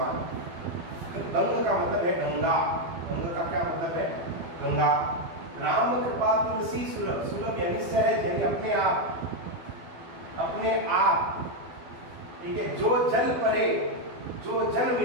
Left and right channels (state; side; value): late; left; 12 ms